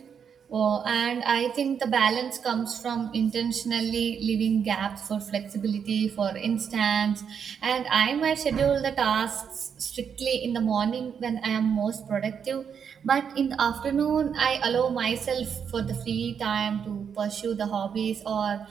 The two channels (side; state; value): left; quieter; 7.3 dB